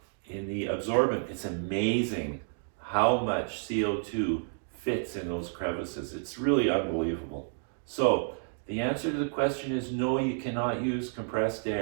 absorbent. It's amazing how much CO2 fits in those crevices. It's really unbelievable. So the answer to the question is no, you cannot use compressed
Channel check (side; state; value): left; silent; digital silence